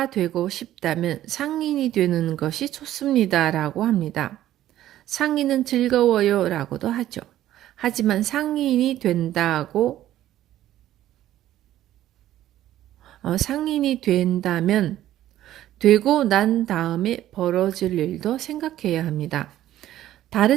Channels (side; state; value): left; quieter; 13.2 dB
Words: 되고 싶다면 상인이 되는 것이 좋습니다. 라고 합니다. 상인은 즐거워요. 라고도 하죠. 하지만 상인이 된다면 되고 난 다음에 벌어질 일도 생각해야 합니다.